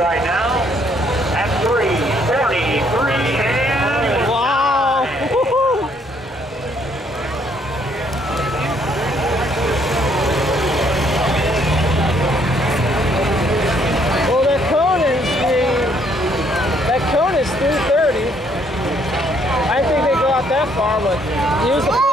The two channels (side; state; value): both; normal; correlation 0.67